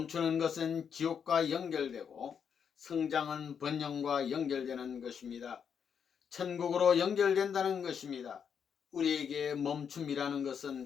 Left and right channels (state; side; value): quieter; right; 7.3 dB